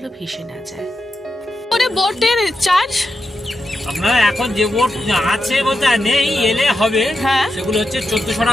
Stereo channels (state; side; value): normal; both; correlation 0.88